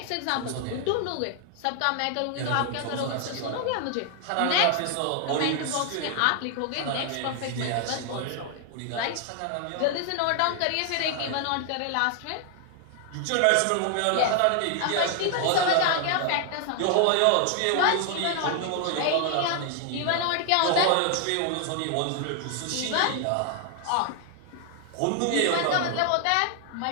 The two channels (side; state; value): both; different; correlation 0.00